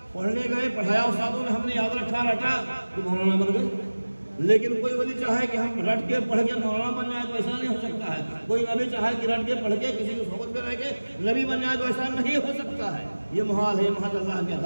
پڑھنے گئے, پڑھایا استادوں نے, ہم نے یاد رکھا, رٹا, تو مولانا بن گئے. لیکن کوئی ولی چاہے کہ ہم رٹ کے پڑھ کے مولانا بن جائے تو ایسا نہیں ہو سکتا ہے. کوئی نبی چاہے کہ رٹ کے پڑھ کے کسی کو صحبت میں رہ کے نبی بن جائے تو ایسا نہیں ہو سکتا ہے. یہ محال ہے, محض اللہ کی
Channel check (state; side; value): inverted; both; correlation -1.00